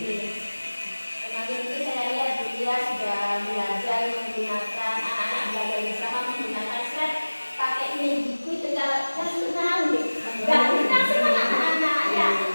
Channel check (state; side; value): inverted; both; correlation -1.00